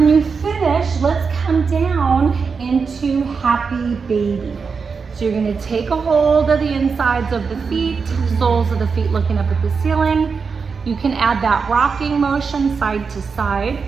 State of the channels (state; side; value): quieter; left; 5.3 dB